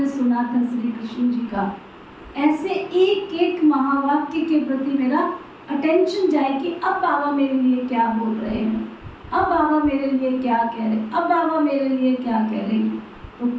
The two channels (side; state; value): both; identical; correlation 1.00